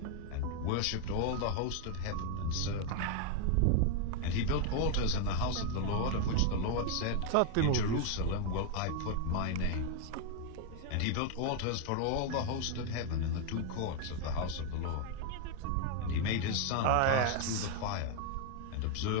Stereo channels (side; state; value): both; different; correlation 0.00